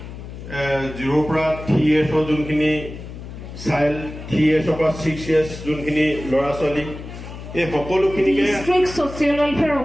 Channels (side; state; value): left; noise; hum, 12 dB below the sound